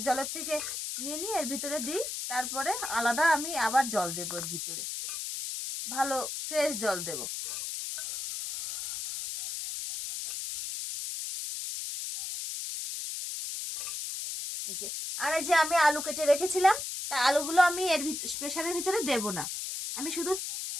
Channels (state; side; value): noise; left; hiss, 5 dB below the sound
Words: জলের থেকে নিয়ে নিয়ে এর ভিতরে দিই, তারপরে আলাদা আমি আবার জল দেবো এর ভিতরে, ভালো ফ্রেশ জল দেব। এই যে আর এই যে আমি আলু কেটে রেখেছিলাম, তা আলুগুলো আমি এর প্রেসারের ভিতরে দেব না, আমি শুধু